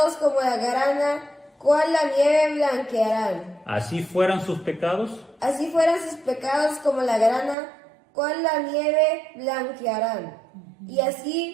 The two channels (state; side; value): drops out; left; at 7.6 s